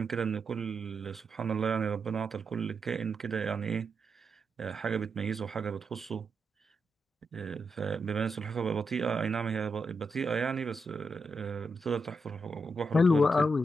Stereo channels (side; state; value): both; normal; correlation 0.84